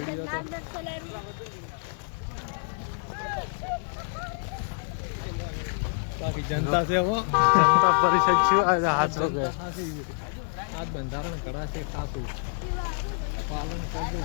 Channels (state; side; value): silent; right; 60 dB below the other